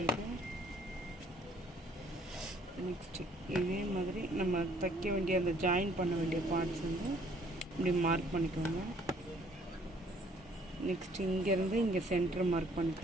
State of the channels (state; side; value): normal; both; correlation 0.61